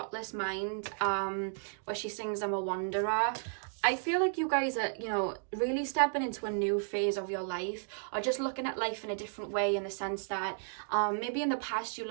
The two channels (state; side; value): silent; left; digital silence